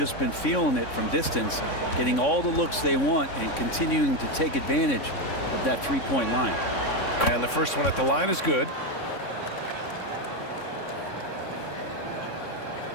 been feeling it from distance, getting all the looks they want and continuing to take advantage of that three-point line. And the first one at the line is good.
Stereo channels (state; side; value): late; right; 3.6 ms